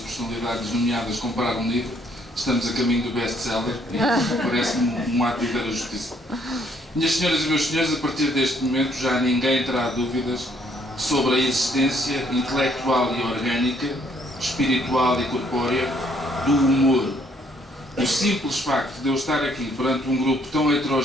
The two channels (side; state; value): both; normal; correlation 0.67